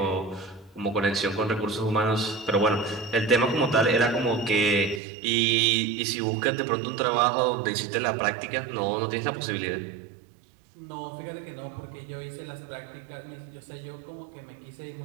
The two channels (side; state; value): left; drops out; at 5.0 s